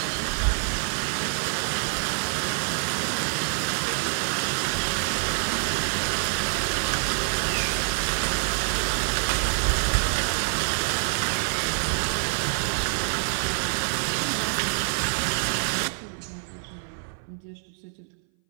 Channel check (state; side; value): silent; left; 59 dB below the other